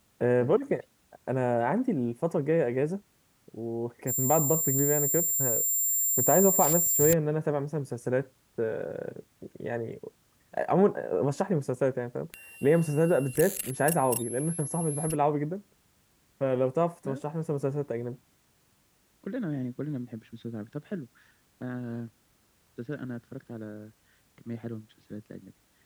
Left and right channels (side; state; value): both; identical; correlation 1.00